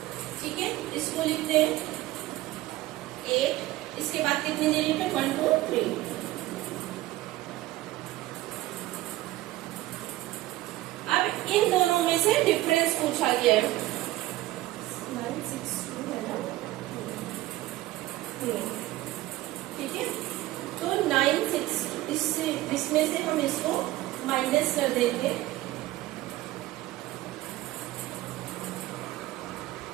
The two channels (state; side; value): quieter; left; 16.9 dB